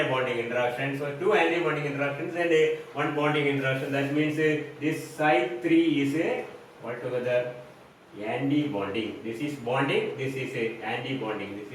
a bonding interaction. So two anti-bonding interactions and one bonding interaction. That means this psi3 is altogether anti-bonding. This is bonding. This is anti-bonding. This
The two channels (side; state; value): both; identical; correlation 1.00